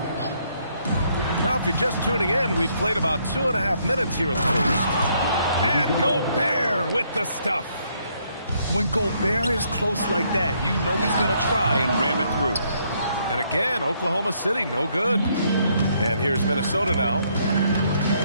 Now, if you're just tuning in, we've played about 2.5 minutes here in the first. And Gobert with the stuff. When Gobert is close like that, you know he's going to try and ram it through. And again, Oklahoma City, no good. And here's Minnesota now.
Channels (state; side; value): inverted; both; correlation -0.71